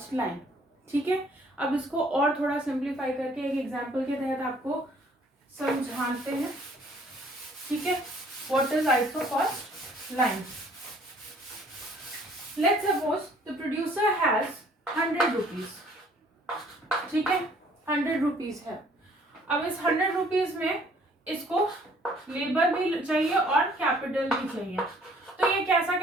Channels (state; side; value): normal; both; correlation 0.59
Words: लाइन. ठीक है, अब इसको और थोड़ा सिंप्लीफाई करके एक एग्जांपल के तहत आपको समझाते हैं. ठीक है, what is iso cost line. Let's suppose the producer has 100 rupees. ठीक है, 100 रुपीज है. अब इस 100 रुपीज में इसको लेबर भी चाहिए और कैपिटल भी चाहिए. तो ये कैसा